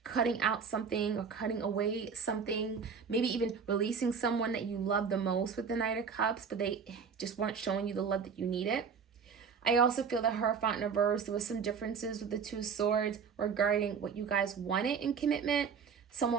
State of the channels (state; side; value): quieter; left; 6.1 dB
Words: cutting out something or cutting away something, maybe even releasing someone that you love the most with the Knight of Cups, but they just weren't showing you the love that you needed. I also feel that Hierophant in reverse, there was some differences with the 2 of Swords regarding what you guys wanted in commitment.